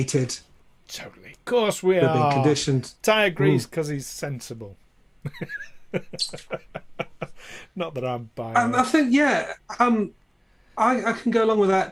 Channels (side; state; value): both; identical; correlation 1.00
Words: Totally. Of course, we are. Being conditioned. Ty agrees because he's sensible. Not that I'm buying. I think, I can go along with that